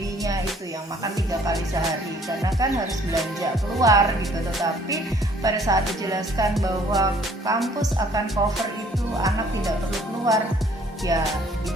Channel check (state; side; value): normal; both; correlation 0.59